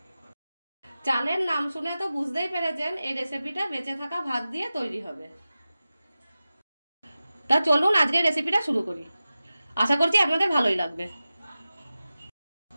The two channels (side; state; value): both; inverted; correlation -0.95